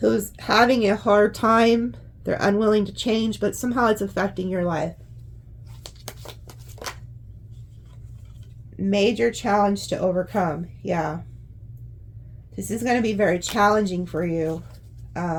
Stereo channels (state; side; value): identical; both; correlation 1.00